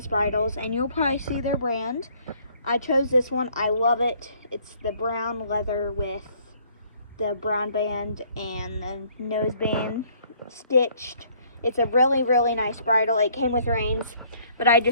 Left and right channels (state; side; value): inverted; both; correlation -0.62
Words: Bridles, and you'll probably see their brand. I chose this one. I love it. It's the brown leather with the brown band and the nose band stitched. It's a really, really nice bridle. It came with reins, but I